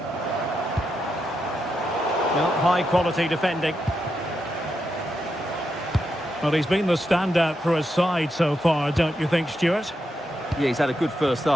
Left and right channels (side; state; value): both; normal; correlation 0.84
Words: Well, high-quality defending. Well, he's been the standout for his side so far, don't you think, Stuart? Yeah, he's had a good first